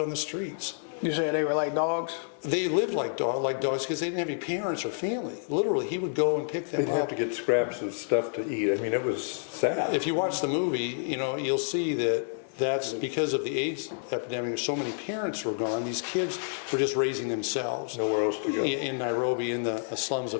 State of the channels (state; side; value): silent; right; digital silence